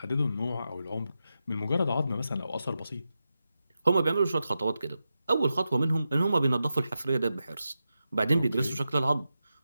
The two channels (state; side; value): inverted; both; correlation -0.90